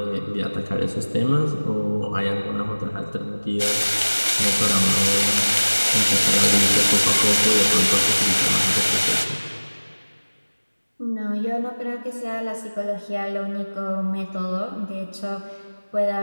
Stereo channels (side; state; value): both; inverted; correlation -1.00